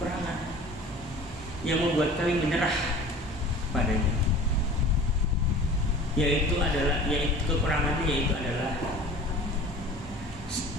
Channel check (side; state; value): both; normal; correlation 0.43